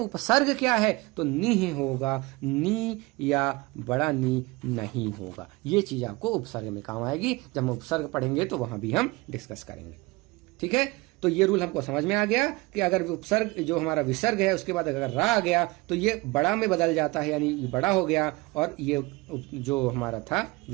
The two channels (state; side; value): quieter; left; 23.0 dB